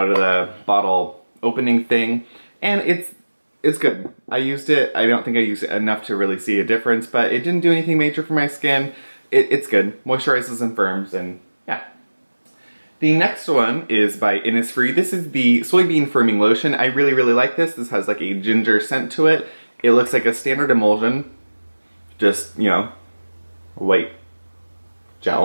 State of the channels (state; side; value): inverted; both; correlation -1.00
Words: of the bottle opening thing. And it's good. I used it. I don't think I used it enough to really see a difference, but it didn't do anything major for my skin. It's good. Moisturizes and firms, and yeah. The next one is by Innisfree. This is the Soybean Firming Lotion. I really, really like this. This has like a ginger scent to it. It looks like a standard emulsion. Just, you know, white